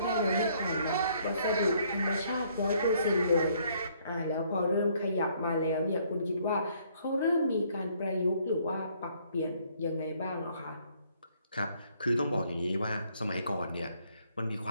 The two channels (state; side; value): inverted; both; correlation -0.66